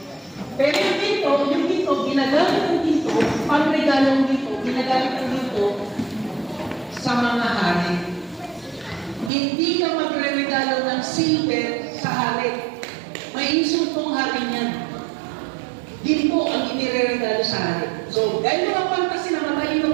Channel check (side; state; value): left; drops out; at 9.3 s